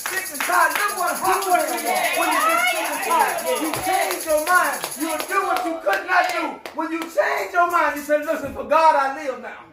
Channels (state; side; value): identical; both; correlation 1.00